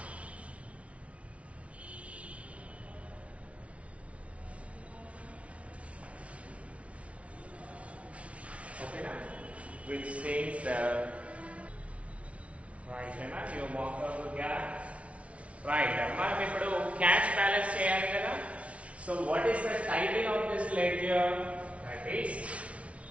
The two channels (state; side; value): late; left; 0.063 ms